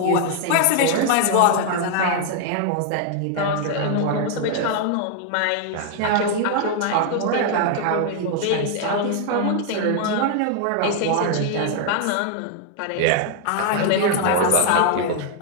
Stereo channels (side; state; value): both; different; correlation 0.00